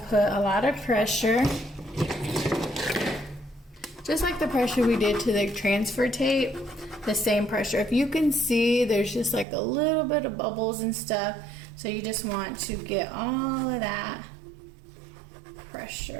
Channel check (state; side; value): drops out; left; at 9.5 s